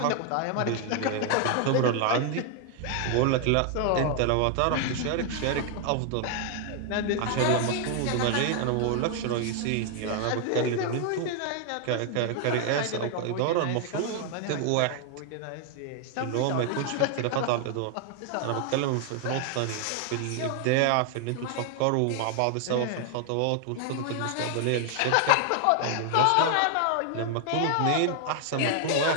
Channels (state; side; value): different; both; correlation 0.00